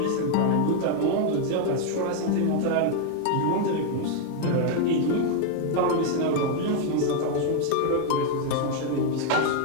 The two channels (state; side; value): different; both; correlation 0.00